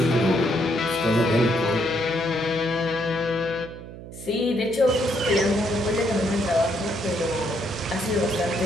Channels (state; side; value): noise; right; hum, 14 dB below the sound